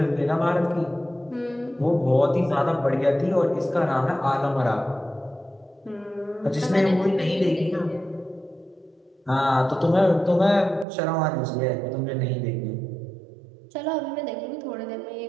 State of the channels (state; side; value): drops out; left; at 10.9 s